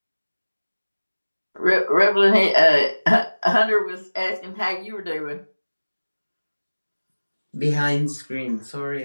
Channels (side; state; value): both; inverted; correlation -1.00